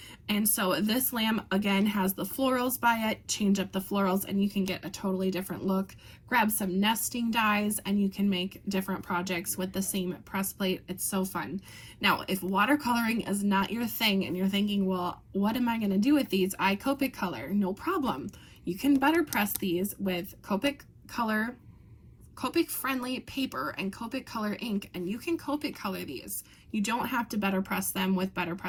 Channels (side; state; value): both; identical; correlation 1.00